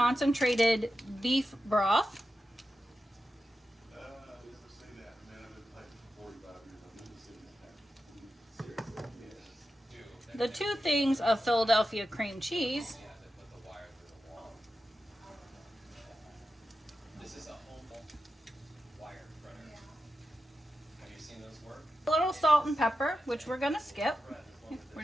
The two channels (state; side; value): normal; both; correlation 0.91